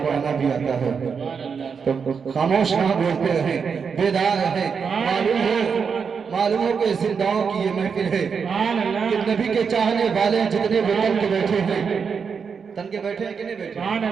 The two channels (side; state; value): left; quieter; 6.1 dB